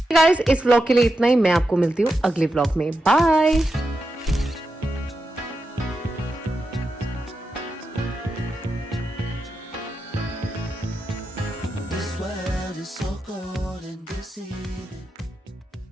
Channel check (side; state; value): both; normal; correlation 0.88